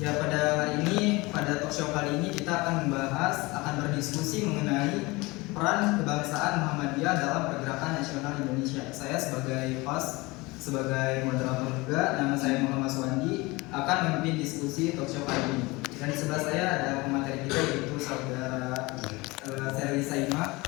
pada hari ini, pada talk show kali ini kita akan berdiskusi mengenai peran kebangsaan Muhammadiyah dalam pergerakan nasional Indonesia. Saya sebagai host, sebagai moderator juga, nama saya Muhammad Suwandi, akan memimpin diskusi talk show kali ini. Dan di sebelah saya ada pemateri kita, yaitu saudara Seri Saima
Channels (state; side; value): quieter; right; 23.2 dB